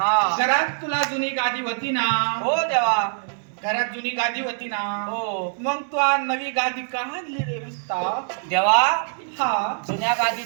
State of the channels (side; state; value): left; silent; 63 dB below the other